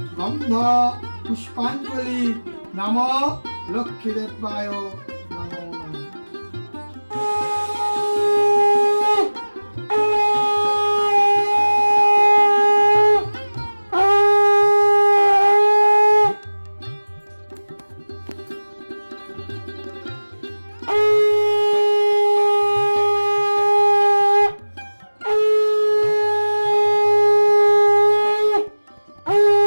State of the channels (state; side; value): inverted; both; correlation -1.00